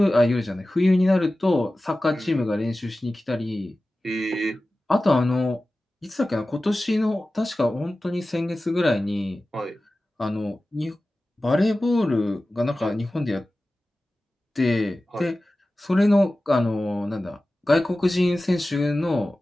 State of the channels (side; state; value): both; normal; correlation 0.96